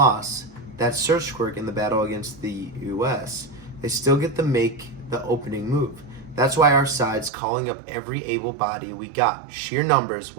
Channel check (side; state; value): left; drops out; at 7.3 s